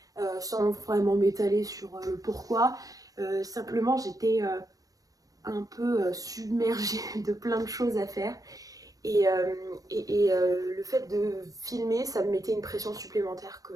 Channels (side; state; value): left; late; 0.17 ms